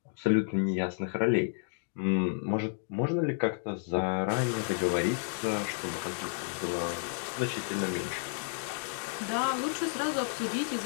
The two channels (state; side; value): silent; right; digital silence